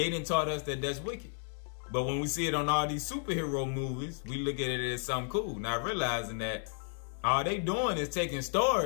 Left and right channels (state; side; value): silent; right; 56 dB below the other